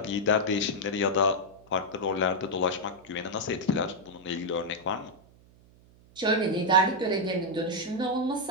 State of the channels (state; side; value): noise; right; hum, 27 dB below the sound